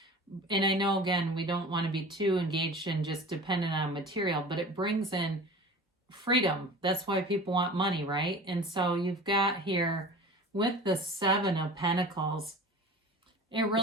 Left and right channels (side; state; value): both; normal; correlation 0.38